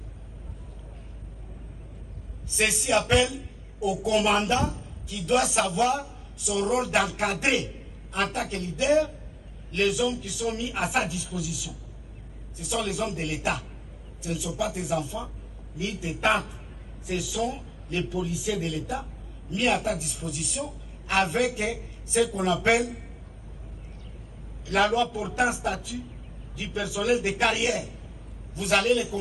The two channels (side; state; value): both; identical; correlation 1.00